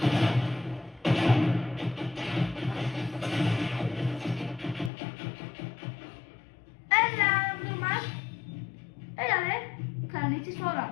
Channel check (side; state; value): right; drops out; at 4.9 s